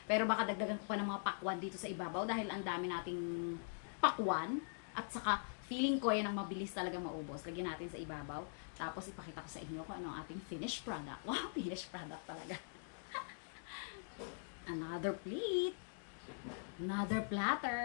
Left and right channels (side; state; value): right; silent; digital silence